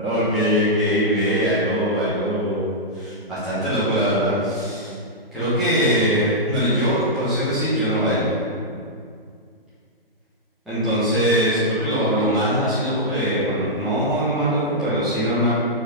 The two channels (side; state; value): both; normal; correlation -0.08